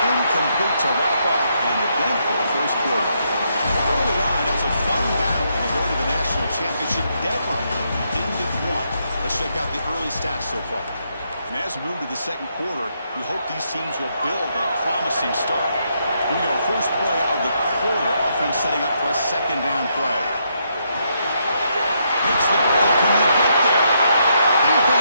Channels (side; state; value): both; inverted; correlation -0.77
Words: incomplete to wrap up an eventful first quarter. Early on, it was a fun battle on the road to the national championship deadline. Ended 1. Let's check out the early stats so far. And as we move to the second quarter, we hope these teams will build a promising start. Here we go, first play of the quarter. Offense setting up for a 2nd down play. Makes the play. Can you get there?